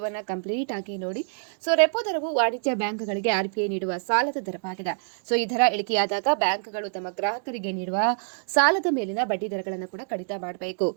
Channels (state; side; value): silent; left; digital silence